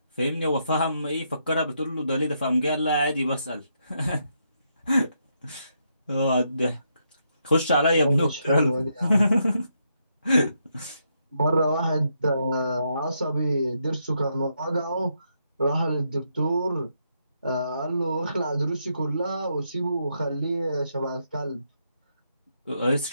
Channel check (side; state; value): both; inverted; correlation -0.78